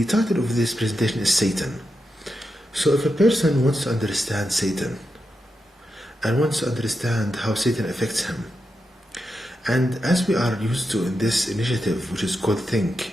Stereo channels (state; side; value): normal; both; correlation 0.87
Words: title of this presentation is Satan. So, if a person wants to understand Satan, and wants to understand how Satan affects him, and as we are used to in this initiative, which is called